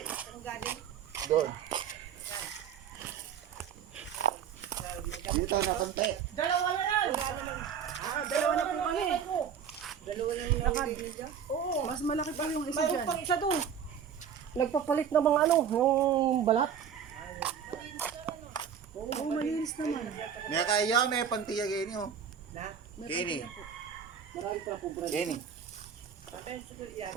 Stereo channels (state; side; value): quieter; left; 7.8 dB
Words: saan galing? Doon. Dito na konti. Dalawa na yan! Dalawa na po kami. Dalawa na yung nabibili dyan? Oo. Mas malaki pa yung isa Mayroon dyan. pang isa doon. Nagpapalit ng mga ano, yung balat. Oo, malinis naman. May kaya may pantiya gini oh. Na? Gini. Marami pa po, brother. Gini. Kapag siguro yan.